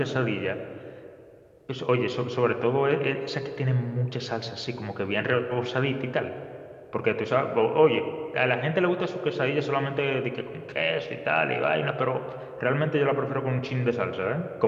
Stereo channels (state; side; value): identical; both; correlation 1.00